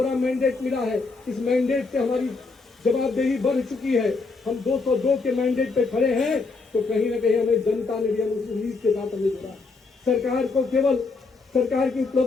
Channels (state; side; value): quieter; right; 4.1 dB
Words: मैंडेट मिला है। इस मैंडेट से हमारी जवाबदेही बढ़ चुकी है। हम 202 के मैंडेट पे खड़े हैं तो कहीं ना कहीं हमें जनता ने भी उस उम्मीद के साथ हमें जुड़ा। सरकार को केवल सरकार की